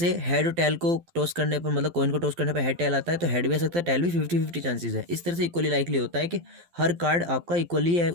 हेड और टेल को टॉस करने पर, मतलब कॉइन को टॉस करने पर हेड टेल आता है, तो हेड भी आ सकता है, टेल भी, 50-50 चांसेस है। इस तरह से इक्वली लाइकली होता है कि हर कार्ड आपका इक्वली है,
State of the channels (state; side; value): late; left; 12 ms